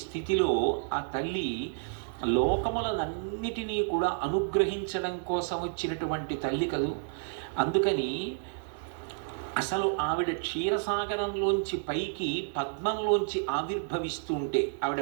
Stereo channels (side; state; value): left; silent; digital silence